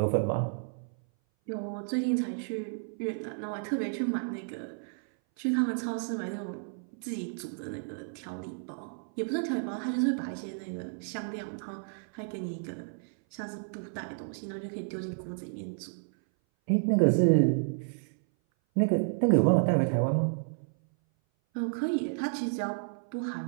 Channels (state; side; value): silent; left; 57 dB below the other